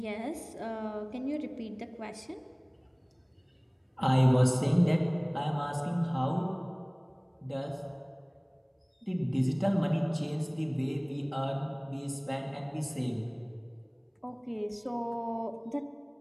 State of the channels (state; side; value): identical; both; correlation 1.00